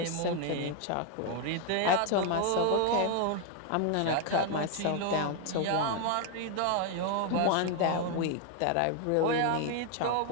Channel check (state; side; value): different; both; correlation 0.00